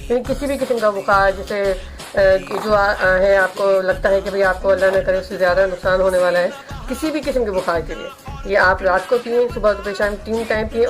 किसी भी किस्म का बुखार जैसे जो है, आपको लगता है कि भाई आपको अल्लाह न करे उससे ज़्यादा नुकसान होने वाला है, किसी भी किस्म के बुखार के लिए ये आप रात को पिएँ, सुबह दोपहर शाम 3 टाइम पिएँ।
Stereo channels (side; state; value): both; identical; correlation 1.00